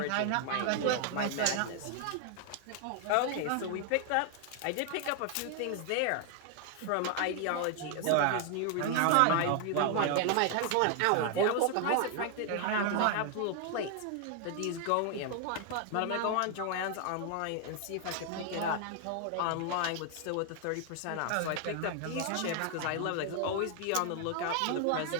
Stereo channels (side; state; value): both; different; correlation 0.00